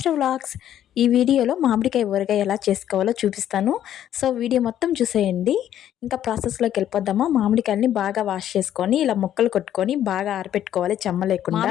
వ్లాగ్స్. ఈ వీడియోలో మామిడికాయ ఊరగాయ ఎలా చేసుకోవాలో చూపిస్తాను. సో వీడియో మొత్తం చూసేయండి. ఇంకా ప్రాసెస్లోకి వెళ్ళిపోద్దామా. మామిడికాయలని బాగా వాష్ చేసుకొని ఇలా ముక్కలు కొట్టుకొని బాగా ఆరపెట్టుకోవాలి చెమ్మ లేకుండా.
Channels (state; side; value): quieter; right; 11.1 dB